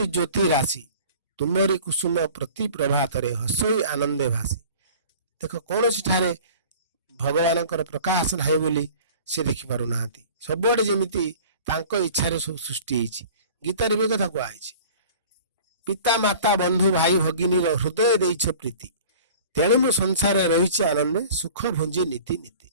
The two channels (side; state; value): both; inverted; correlation -0.44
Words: ଜ୍ୟୋତି ରାଶି, ତୁମରି କୁସୁମ ପ୍ରତି ପ୍ରଭାତରେ ହସଇ ଆନନ୍ଦେ ଭାସି। ଦେଖ କୌଣସି ଠାରେ ଭଗବାନଙ୍କର ପ୍ରକାଶ ନାହିଁ ବୋଲି ସେ ଦେଖିପାରୁନାହାନ୍ତି। ସବୁଆଡେ ଯେମିତି ତାଙ୍କ ଇଚ୍ଛାରେ ସବୁ ସୃଷ୍ଟି ହେଇଛି। ଗୀତାରେ ବି କଥା କୁହାଯାଇଛି, ପିତା ମାତା ବନ୍ଧୁ ଭାଇ ଭଗିନୀର ହୃଦୟ ଦେଇଛ ପ୍ରୀତି, ତେଣୁ ମୁଁ ସଂସାରରେ ରହିଛି ଆନନ୍ଦେ ସୁଖ ଭୁଞ୍ଜି ନୀତି ନୀତି।